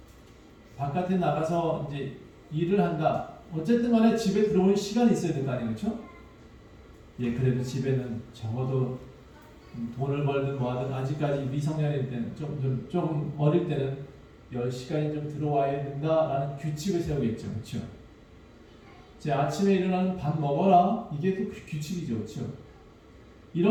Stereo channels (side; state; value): both; identical; correlation 1.00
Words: 바깥에 나가서 이제 일을 한다. 어쨌든 간에 집에 들어오는 시간이 있어야 될 거 아니에요, 그렇죠? 그래도 집에는 적어도 돈을 벌든 뭐하든 아직까지 미성년일 때는 조금 어릴 때는 10시간이 좀 들어와야 된다라는 규칙을 세우겠죠, 그렇죠? 제 아침에 일어나는 밥 먹어라, 이게 또 규칙이죠, 그렇죠?